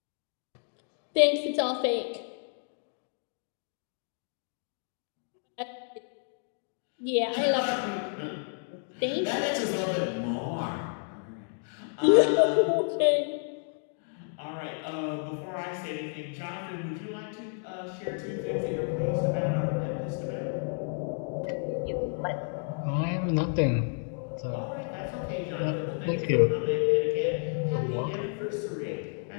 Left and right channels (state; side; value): silent; right; 57 dB below the other